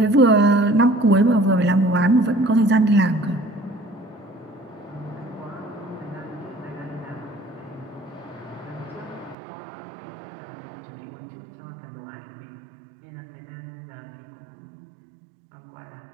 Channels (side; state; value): left; drops out; at 9.3 s